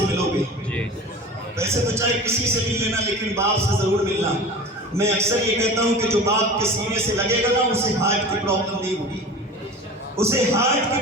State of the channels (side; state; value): both; normal; correlation 0.36